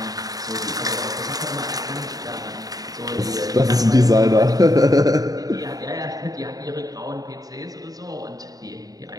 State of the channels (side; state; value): left; late; 0.18 ms